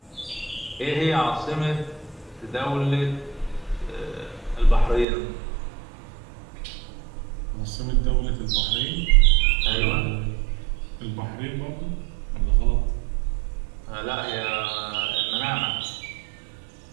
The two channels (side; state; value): left; drops out; at 5.1 s